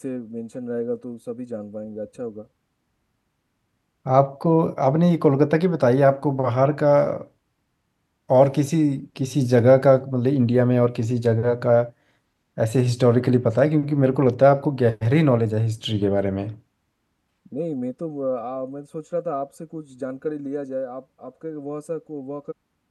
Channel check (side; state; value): both; identical; correlation 1.00